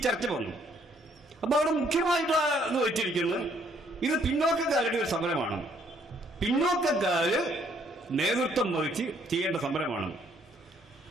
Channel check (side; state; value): both; normal; correlation 0.66